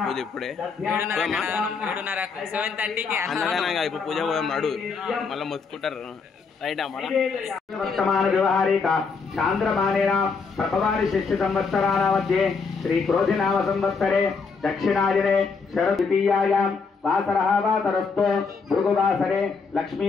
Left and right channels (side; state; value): right; quieter; 5.0 dB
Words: పూజ ఇప్పుడే. అన్నదానంగా ఇప్పుడు పూజ పోదాం నాడు మళ్ళీ మొత్తుకుంటారు. वर्तमान व्यवहारिक चांद्रमानेन प्रभवानि शिष्य संवत्सरानामध्ये श्री क्रोधिनाम संवत्सरे दक्षिणायने शरद्वितीयायां वासरः वासरस्तो भृगुवासरे लक्ष्मी